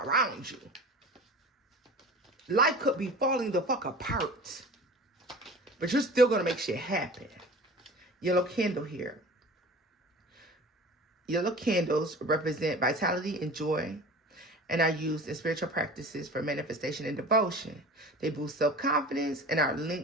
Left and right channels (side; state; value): both; normal; correlation 0.39